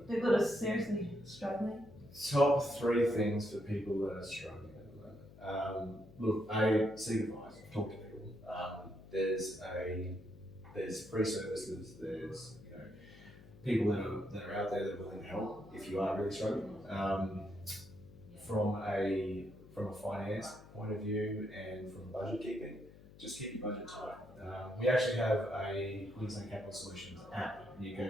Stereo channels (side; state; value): left; noise; hum, 20 dB below the sound